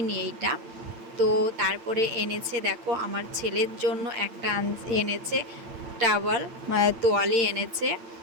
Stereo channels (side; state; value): left; late; 8.8 ms